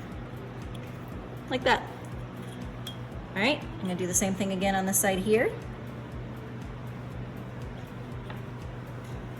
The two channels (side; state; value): both; identical; correlation 1.00